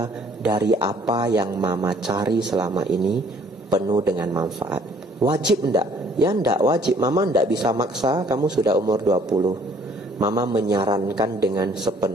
Dari apa yang Mama cari selama ini penuh dengan manfaat. Wajib enggak? Ya enggak wajib. Mama enggak bisa maksa, kamu sudah umur 20. Mama menyarankan dengan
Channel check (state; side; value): normal; both; correlation 0.59